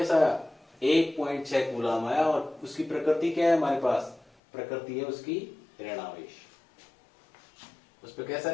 आया, 1.6 कूलाम आया। और उसकी प्रकृति क्या है हमारे पास, प्रकृति है उसकी ऋणावेश। उस पर कैसा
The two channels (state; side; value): drops out; right; at 4.3 s